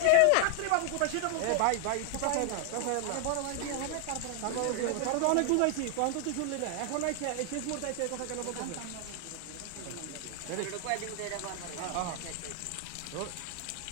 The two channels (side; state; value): both; different; correlation 0.00